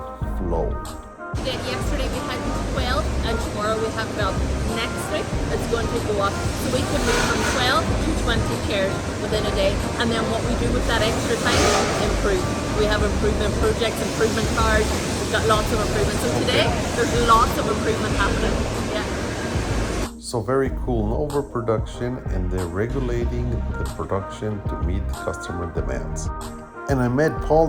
flow. Yesterday we had 12 and tomorrow we have 12. Next week it's going to go up. So we can move from 12 to 20 chairs within a day. And then what we do with that extra time, improve. We have improvement projects, improvement cards. We've got lots of improvements. So today there's lots of improvement happening. Yeah. So very cool, no overproduction, and they're regulating the production to meet the customer demands. And I met Paul,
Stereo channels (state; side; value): identical; both; correlation 1.00